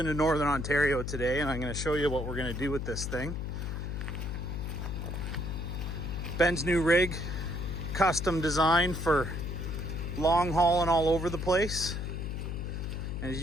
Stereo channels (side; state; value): left; noise; hum, 4 dB below the sound